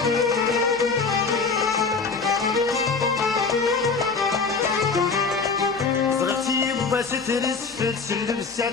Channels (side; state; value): right; quieter; 4.7 dB